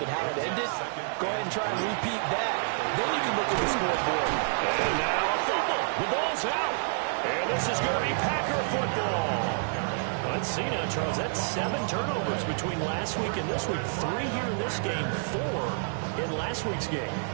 how it ended. Go ahead and try and repeat that. Then you can look at the scoreboard. And now a fumble. The ball's out. And this is going to be Packer football. Let's see now, Charles. That's 7 turnovers between last week and this week. 3 here in this game, 4 in last week's game.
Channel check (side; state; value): left; silent; 59 dB below the other